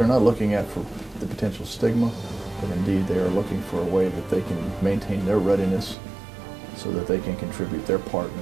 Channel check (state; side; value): drops out; left; at 6.0 s